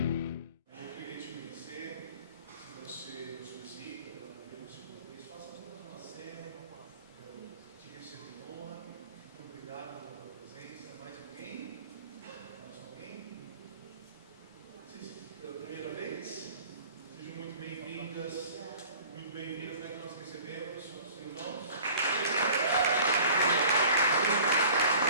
Eu queria te conhecer, se você nos visita pela primeira ou segunda vez, faça apenas uma cena, eu te recebo em honra, muito obrigado pela presença. Mais alguém? Mais alguém? Vocês, pela primeira vez? Sejam muito bem-vindas, muito bem-vindas, como é que nós recebemos os irmãos?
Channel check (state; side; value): inverted; both; correlation -0.46